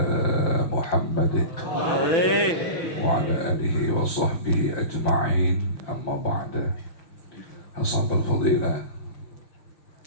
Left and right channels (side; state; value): right; late; 6.0 ms